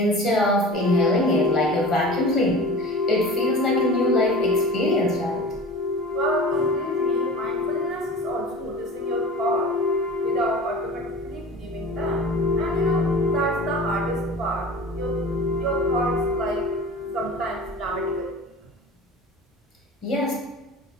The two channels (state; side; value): normal; both; correlation 0.37